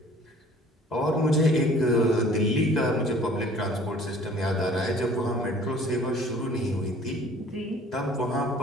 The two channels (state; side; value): normal; both; correlation 0.52